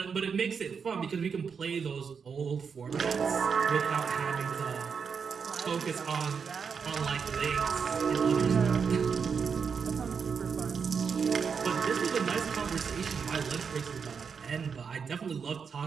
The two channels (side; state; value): left; quieter; 6.1 dB